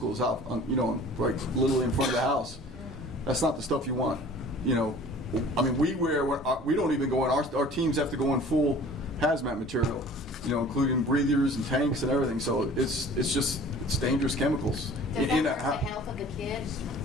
out, right literally in front of the house, that's not the stuff you want. I mean, we don't even go in. Our teams have to go in full hazmat material, including breathers and tanks and everything. So it's dangerous chemicals. Does that hurt the health of the kids?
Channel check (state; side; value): normal; both; correlation 0.47